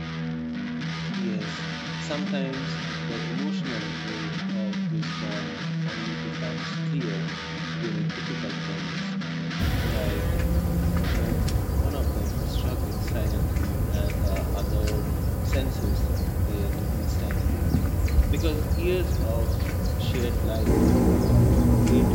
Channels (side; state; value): both; identical; correlation 1.00